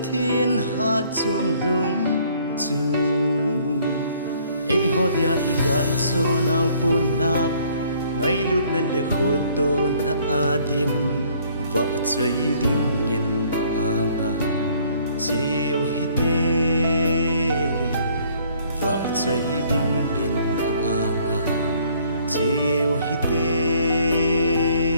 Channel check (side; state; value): both; inverted; correlation -0.61